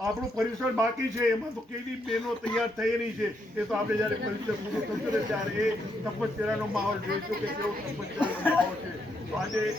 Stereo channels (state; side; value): normal; both; correlation 0.77